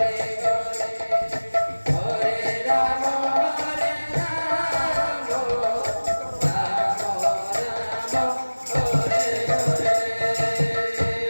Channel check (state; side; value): inverted; both; correlation -1.00